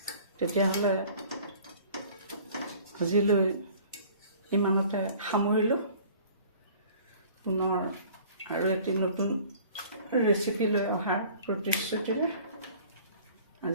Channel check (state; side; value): inverted; both; correlation -0.49